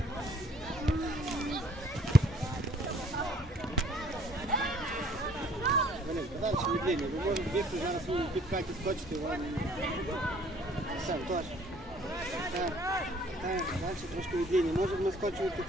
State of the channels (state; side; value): normal; both; correlation 0.58